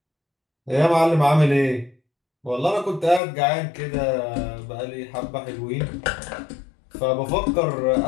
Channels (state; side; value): drops out; right; at 3.2 s